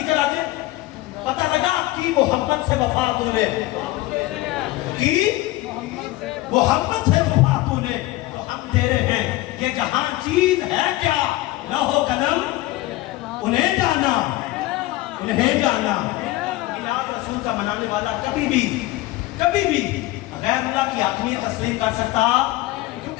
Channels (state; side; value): quieter; right; 17.8 dB